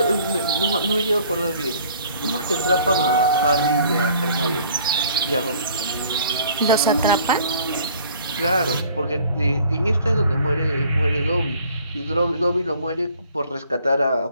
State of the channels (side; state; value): both; inverted; correlation -0.55